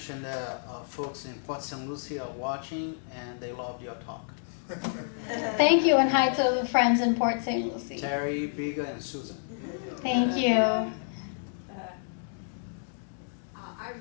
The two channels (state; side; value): silent; right; digital silence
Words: that folks in Port St. Lucie are watching, and they loved your talk. Thank you, and hi to the friends in Port St. Lucie. Terry, Biga, and Susan. Thank you. I